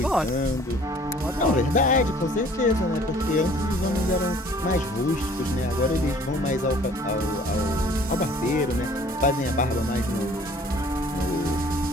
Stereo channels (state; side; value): normal; both; correlation 0.53